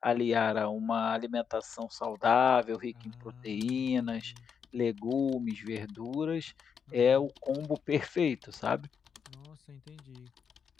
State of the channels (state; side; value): quieter; right; 6.8 dB